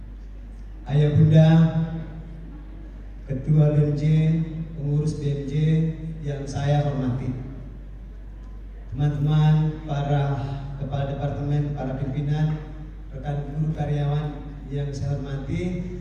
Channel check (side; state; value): both; identical; correlation 1.00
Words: Ayah bunda, ketua BMJ, pengurus BMJ yang saya hormati, teman-teman para kepala departemen, para pimpinan, rekan guru karyawan yang saya hormati,